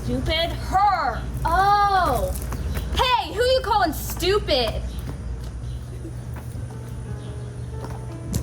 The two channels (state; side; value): identical; both; correlation 1.00